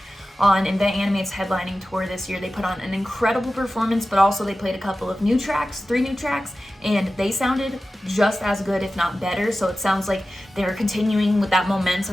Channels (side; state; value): both; normal; correlation 0.94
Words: on Invent Animate's headlining tour this year. They put on an incredible performance, but also they played a couple of new tracks, 3 new tracks, and they sounded just as good, if not better. So it sounds like they're continuing with that